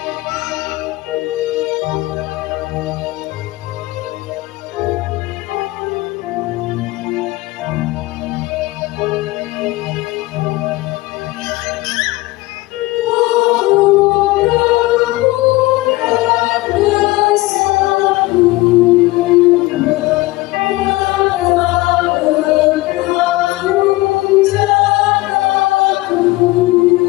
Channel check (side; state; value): right; quieter; 20.1 dB